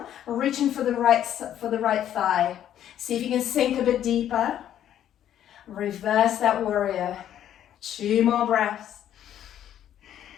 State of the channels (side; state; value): right; quieter; 10.8 dB